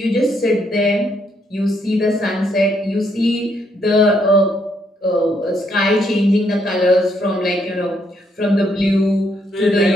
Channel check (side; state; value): both; normal; correlation 0.73